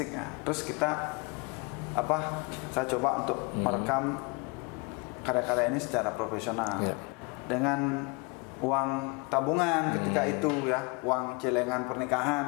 ya. Terus kita saya coba untuk merekam karya-karya ini secara profesional dengan uang tabungan ketika itu ya, uang celengan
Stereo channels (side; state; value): right; quieter; 29.8 dB